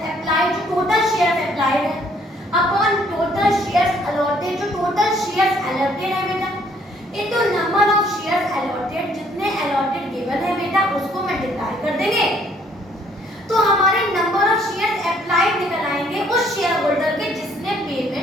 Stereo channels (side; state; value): both; normal; correlation 0.64